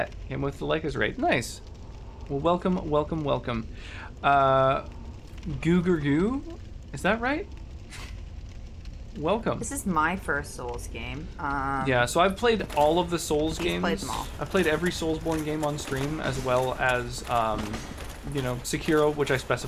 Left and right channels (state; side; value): identical; both; correlation 1.00